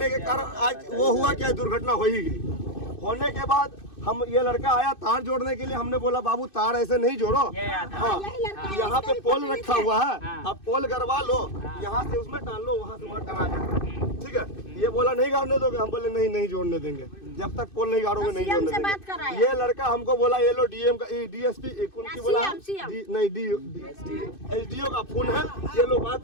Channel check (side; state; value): right; late; 2.6 ms